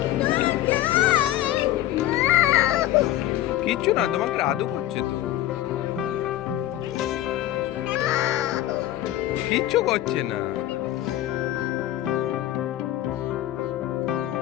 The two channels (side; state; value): right; quieter; 13.9 dB